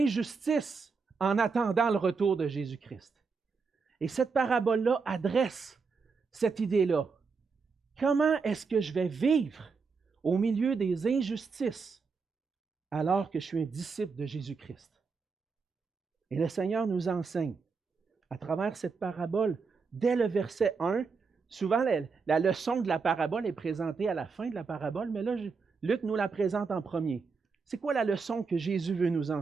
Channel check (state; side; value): quieter; left; 5.0 dB